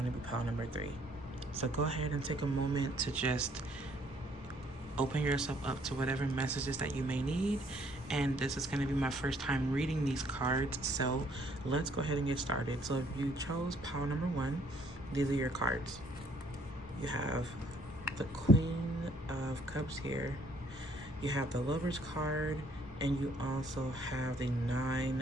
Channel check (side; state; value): both; normal; correlation 0.64